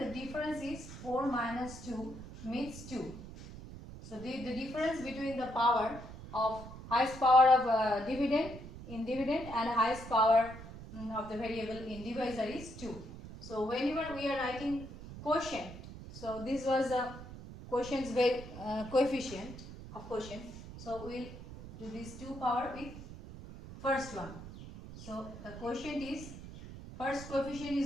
difference is 4 minus 2 means 2. So the difference between the power of highest power of dividend in dividend and highest power of the variable in divisor is 2. So whenever we are writing quotient, so this was a quotient's coefficient of quotient. So we will do this 2 power with first one. So the quotient is, first coefficient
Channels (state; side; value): noise; right; rumble, 13 dB below the sound